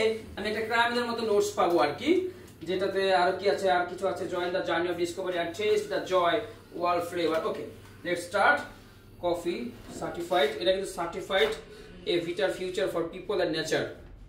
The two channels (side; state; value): both; identical; correlation 1.00